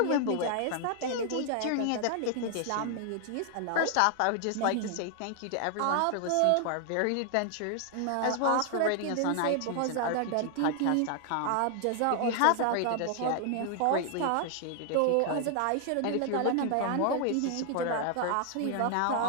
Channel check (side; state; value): both; different; correlation 0.00